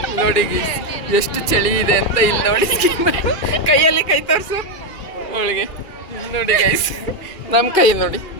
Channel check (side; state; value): right; late; 2.4 ms